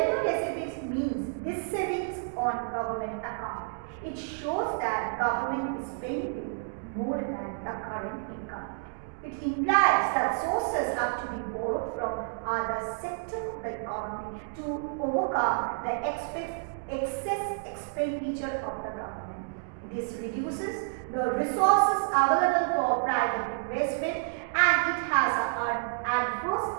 deficit means this savings on government account. It shows that government is spending more than the current income. It implies that sources have to be borrowed from other sectors of the economy to overcome the excess expenditure of the government. This reduces the resources available for private investment and it has an adverse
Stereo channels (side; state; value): left; silent; digital silence